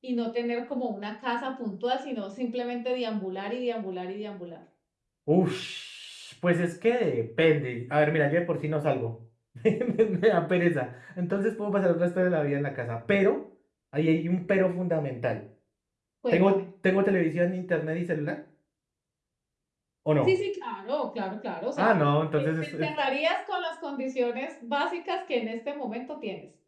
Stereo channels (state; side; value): identical; both; correlation 1.00